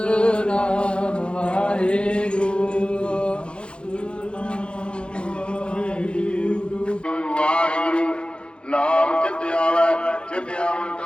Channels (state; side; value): late; right; 0.056 ms